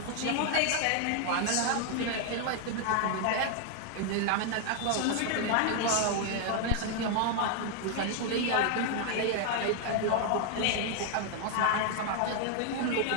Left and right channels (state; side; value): different; both; correlation 0.00